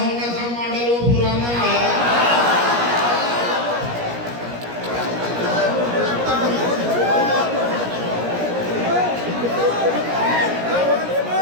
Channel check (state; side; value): late; left; 17 ms